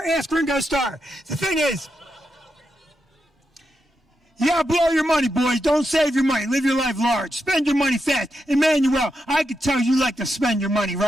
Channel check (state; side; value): normal; both; correlation 0.85